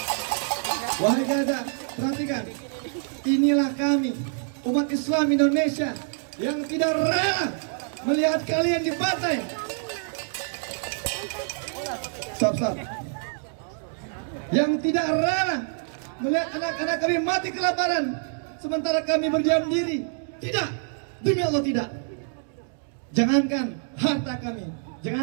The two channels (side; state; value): left; silent; digital silence